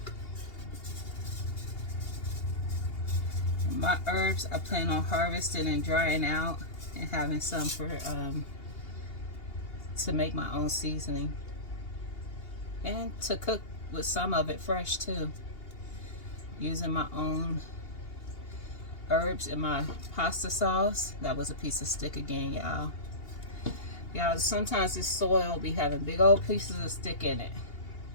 My herbs I plan on harvesting and drying out and having some for to make my own seasoning and to cook with some of it fresh too, using my own herbs in my pasta sauce. That was a piece of stick again, y'all. Sometimes this soil be having big old pieces of stick in it,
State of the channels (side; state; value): right; late; 2.8 ms